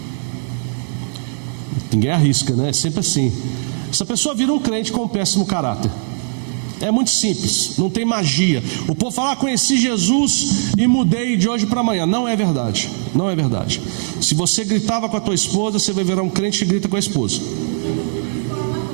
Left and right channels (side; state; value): left; silent; 67 dB below the other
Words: Ninguém arrisca, né? É sempre assim. Essa pessoa vira um crente com um péssimo caráter. É muito simples, não tem magia. O povo fala: conheci Jesus e mudei de hoje para amanhã. Não é verdade, não é verdade. Se você gritava com a tua esposa, você vai virar um crente que grita com a esposa.